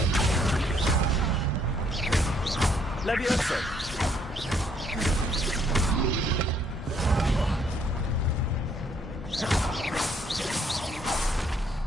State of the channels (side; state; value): both; normal; correlation 0.67